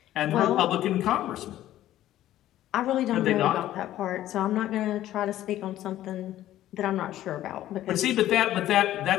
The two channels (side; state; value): right; quieter; 13.5 dB